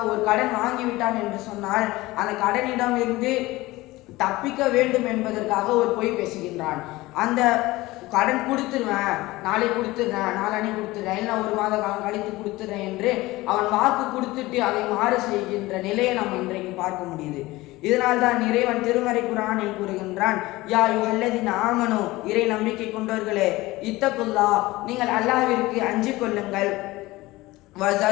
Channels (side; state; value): right; quieter; 19.5 dB